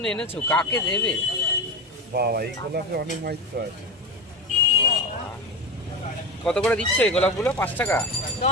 এনেছো, কাকে দেবে? বাবা, এই গোলাপে অনেক মাইত্র আছে। কত করে দিচ্ছ এই গোলাপগুলো? 5 টাকা?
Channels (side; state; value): both; normal; correlation 0.21